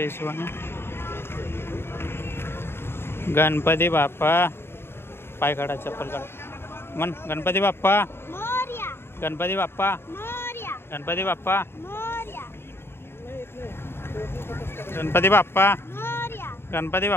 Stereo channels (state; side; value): late; right; 0.11 ms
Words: हिशोबाने. गणपती बाप्पा पाय काढा चप्पल काढा. मन गणपती बाप्पा. गणपती बाप्पा. गणपती बाप्पा. गणपती बाप्पा. गणपती